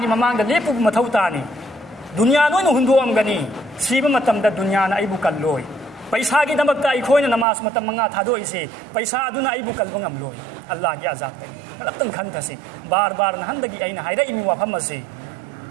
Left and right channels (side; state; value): left; drops out; at 7.5 s